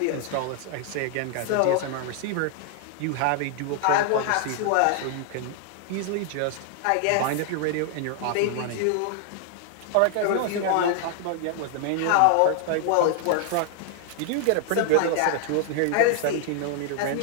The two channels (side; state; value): both; different; correlation 0.00